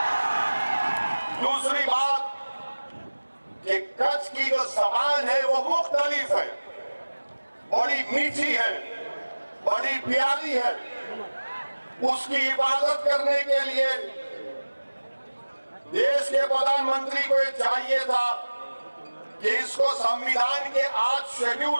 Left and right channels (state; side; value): inverted; both; correlation -1.00